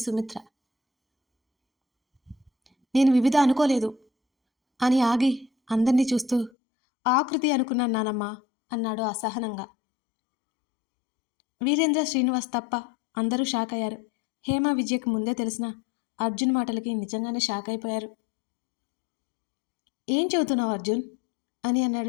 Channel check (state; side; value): drops out; right; at 6.5 s